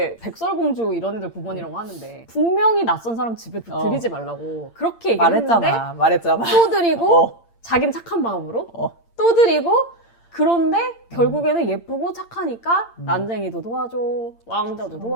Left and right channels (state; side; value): late; right; 8.7 ms